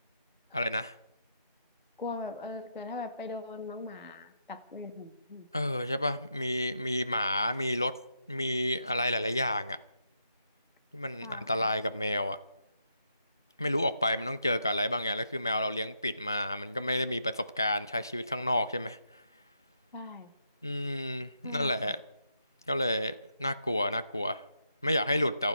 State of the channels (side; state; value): both; inverted; correlation -0.81